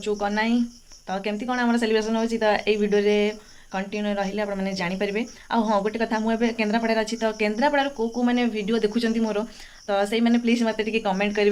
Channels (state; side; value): identical; both; correlation 1.00